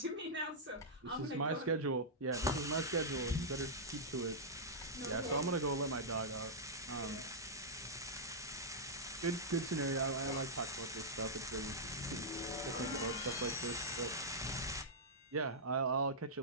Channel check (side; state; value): both; normal; correlation -0.10